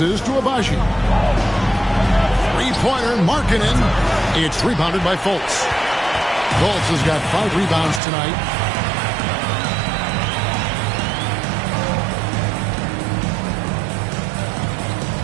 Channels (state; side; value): drops out; left; at 8.0 s